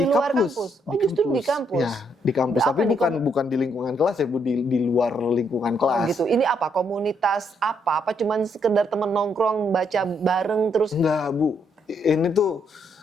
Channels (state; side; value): normal; both; correlation 0.74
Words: luar kampus? Oh, justru di kampus? Ya, di kampus. Tapi bukan di lingkungan kelas ya, Bu, di luar lingkungan kelas. Oh gitu. Ini apa? Komunitas apa? Apa cuman sekedar temen nongkrong, baca bareng terus? Enggak, Bu. Ini tuh